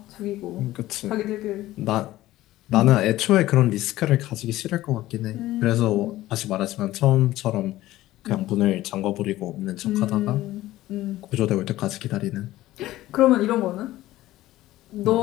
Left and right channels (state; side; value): quieter; right; 15.9 dB